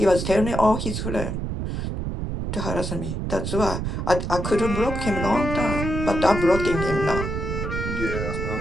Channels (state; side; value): noise; right; rumble, 3 dB below the sound